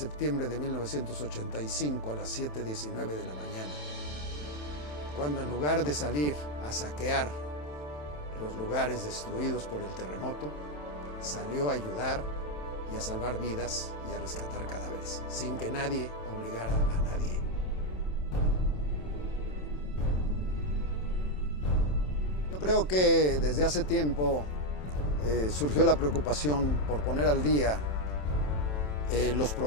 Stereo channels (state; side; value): late; right; 27 ms